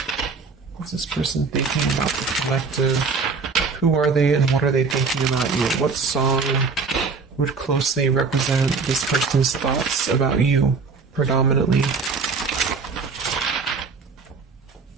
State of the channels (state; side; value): quieter; left; 4.7 dB